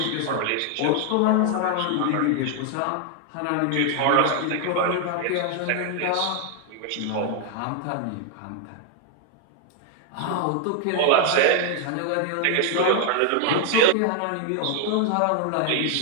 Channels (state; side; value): different; both; correlation 0.00